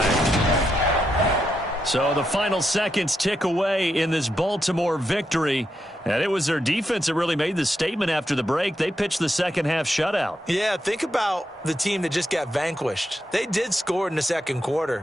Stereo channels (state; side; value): normal; both; correlation 0.83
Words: So the final seconds tick away in this Baltimore victory. And it was their defense that really made the statement after the break. They pitched the second-half shutout. Yeah, think about the team that just got vanquished. They did score in the 2nd